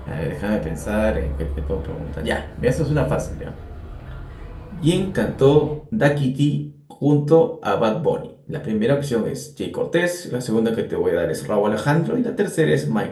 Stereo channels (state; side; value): identical; both; correlation 1.00